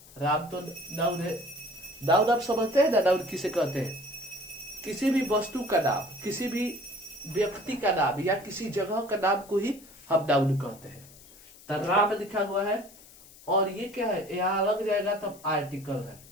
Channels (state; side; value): noise; left; hiss, 22 dB below the sound